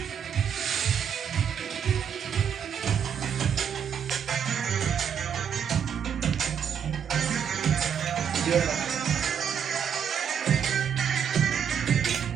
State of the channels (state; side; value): quieter; left; 7.9 dB